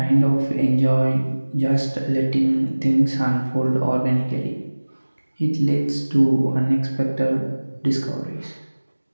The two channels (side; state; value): both; inverted; correlation -1.00